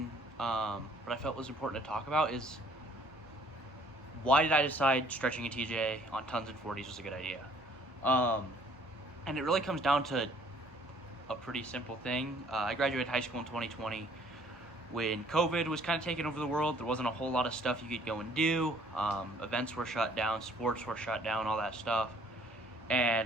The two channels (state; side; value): normal; both; correlation 0.59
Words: but I felt was important to talk about is, why did I decide stretching a TJ on tons and 40s was a good idea? And it really comes down to a pretty simple thing. I graduated high school in 2020 when COVID was kind of taking over the world. There wasn't a whole lot of stuff you could go and do. Events were shut down, sports were shut down, all that stuff.